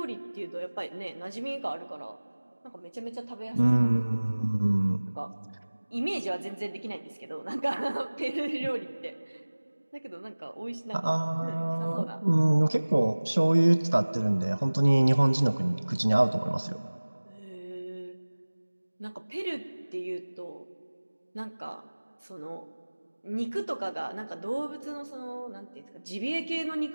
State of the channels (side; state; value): both; inverted; correlation -1.00